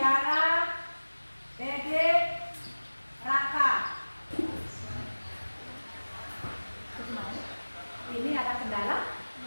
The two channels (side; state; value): both; inverted; correlation -1.00